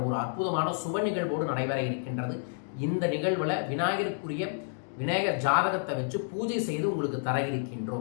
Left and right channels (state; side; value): silent; right; digital silence